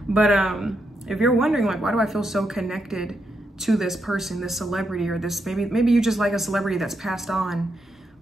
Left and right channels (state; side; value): normal; both; correlation 0.82